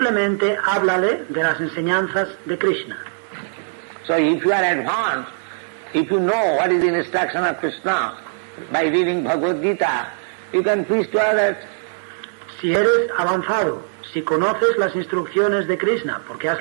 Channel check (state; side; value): silent; left; digital silence